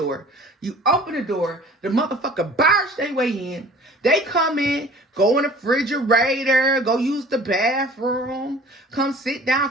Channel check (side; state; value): both; normal; correlation 0.47